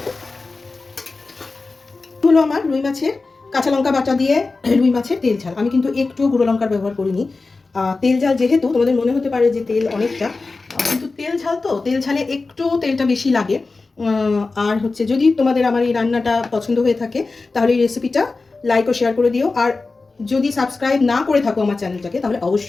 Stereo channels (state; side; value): quieter; right; 3.8 dB